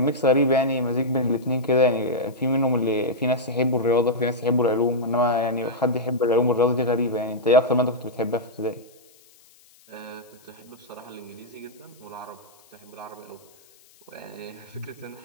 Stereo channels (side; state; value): left; noise; hiss, 28 dB below the sound